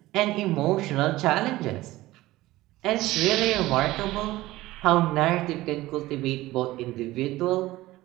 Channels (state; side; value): quieter; left; 17.5 dB